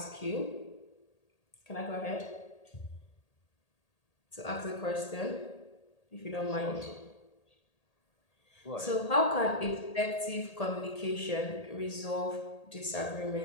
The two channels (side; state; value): right; late; 1.8 ms